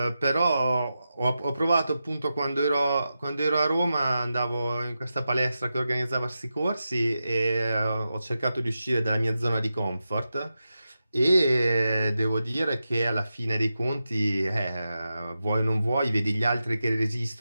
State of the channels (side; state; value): both; inverted; correlation -0.90